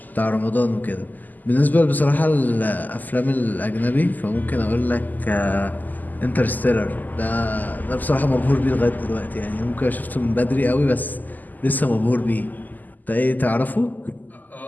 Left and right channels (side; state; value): right; late; 0.084 ms